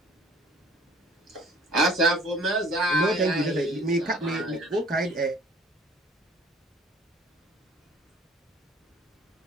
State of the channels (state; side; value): normal; both; correlation 0.52